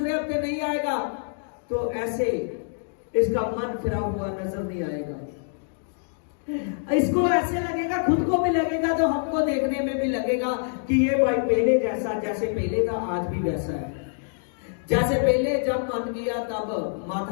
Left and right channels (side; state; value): right; silent; digital silence